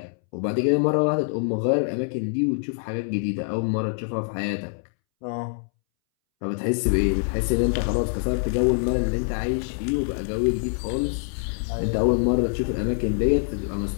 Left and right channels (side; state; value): right; silent; 62 dB below the other